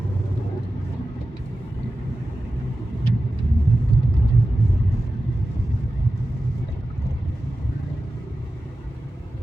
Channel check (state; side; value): normal; both; correlation 0.94